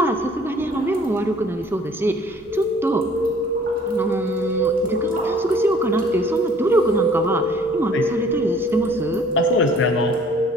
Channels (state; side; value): normal; both; correlation 0.54